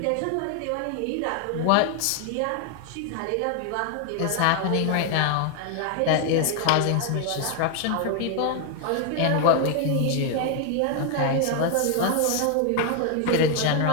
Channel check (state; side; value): different; both; correlation 0.00